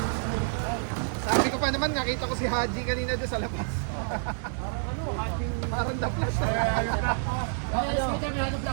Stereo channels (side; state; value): left; silent; digital silence